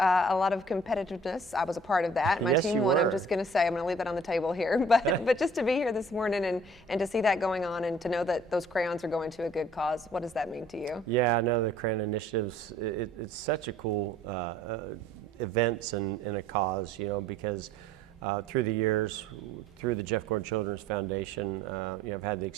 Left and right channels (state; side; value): normal; both; correlation 0.54